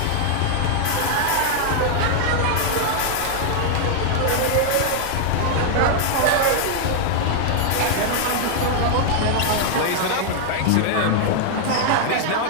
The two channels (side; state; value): both; different; correlation -0.01